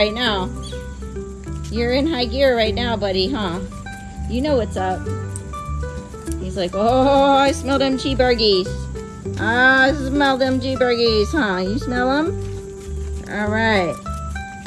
now. You're in high gear right now, buddy, huh? You know what's up. He's like, oh, I smell them cheeseburgies. I smell them cheeseburgies, huh? You smell them? All right.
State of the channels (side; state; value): both; identical; correlation 1.00